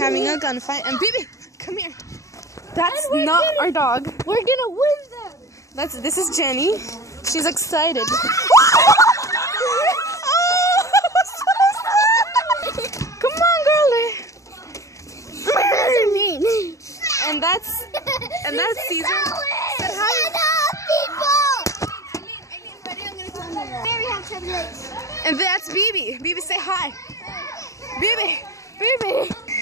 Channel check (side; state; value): right; late; 0.15 ms